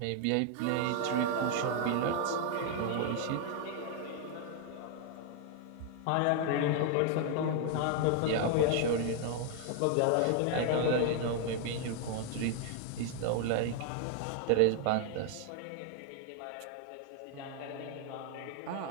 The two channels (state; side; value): different; both; correlation 0.00